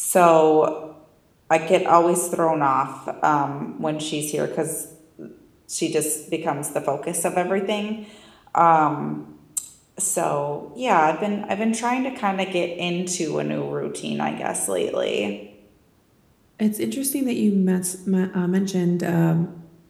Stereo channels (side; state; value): both; identical; correlation 1.00